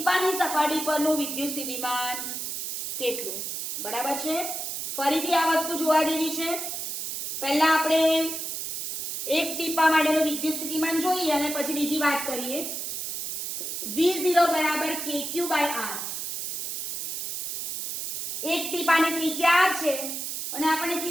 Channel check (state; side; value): noise; right; hiss, 4 dB below the sound